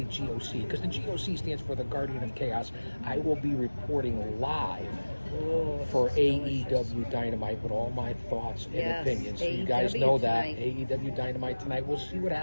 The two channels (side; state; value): both; inverted; correlation -1.00